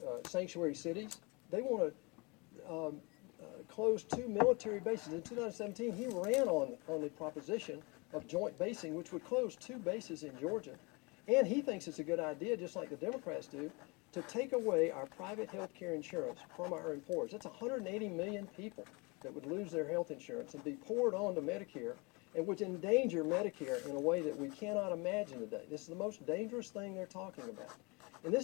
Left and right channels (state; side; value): quieter; right; 28.4 dB